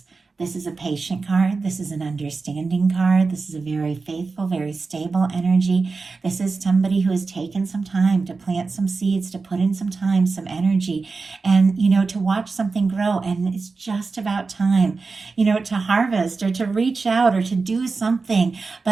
This is a patient card. This is an understanding card. This is a very faithful, very stable energy. This is somebody who has taken some time to plant some seeds, to put in some time, some energy, and, to watch something grow. And it's just about time, to harvest or to reach out or to do something.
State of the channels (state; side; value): quieter; left; 4.2 dB